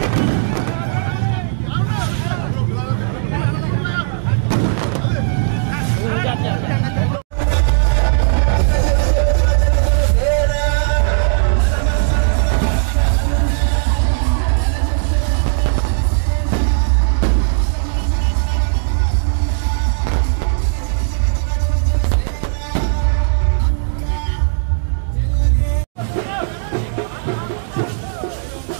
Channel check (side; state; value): left; silent; digital silence